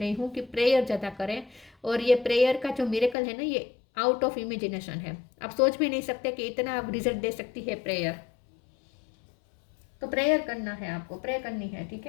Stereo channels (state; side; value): drops out; right; at 3.2 s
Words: हूँ कि प्रेयर ज़्यादा करें, और ये प्रेयर का जो मिरेकल है ना, ये आउट ऑफ इमेजिनेशन है। आप सोच भी नहीं सकते कि इतना आप रिजल्ट दे सकती है प्रेयर। तो प्रेयर करना है आपको, प्रे करनी है, ठीक